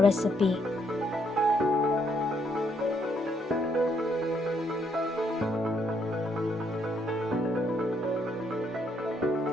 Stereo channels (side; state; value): both; normal; correlation 0.72